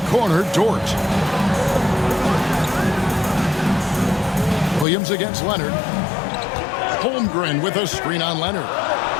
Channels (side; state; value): right; drops out; at 4.9 s